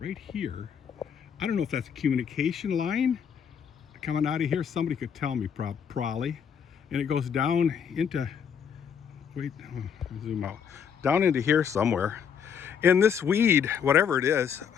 here, I don't know if that's a communication line coming out of here. Somebody could tell me probably. And it goes down into, zoom out, down into here somewhere. And this weed, whatever it is,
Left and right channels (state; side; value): quieter; right; 7.5 dB